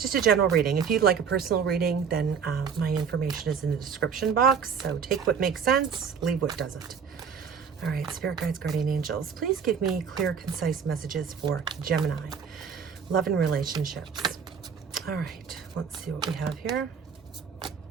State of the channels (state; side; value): quieter; left; 6.6 dB